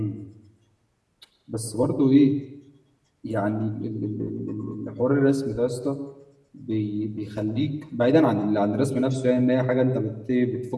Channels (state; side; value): identical; both; correlation 1.00